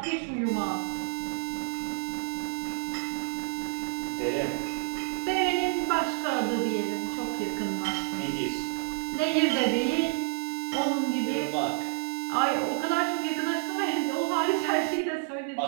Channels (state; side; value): silent; left; digital silence